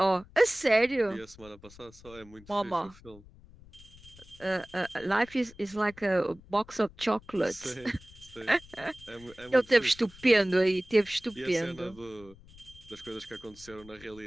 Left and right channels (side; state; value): left; noise; rumble, 22 dB below the sound